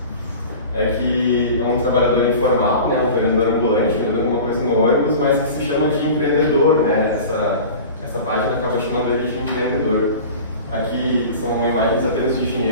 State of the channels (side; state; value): both; inverted; correlation -0.37